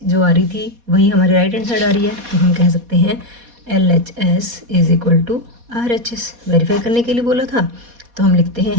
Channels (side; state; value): left; late; 4.2 ms